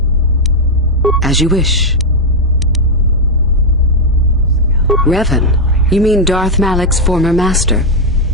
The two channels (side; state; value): both; normal; correlation 0.00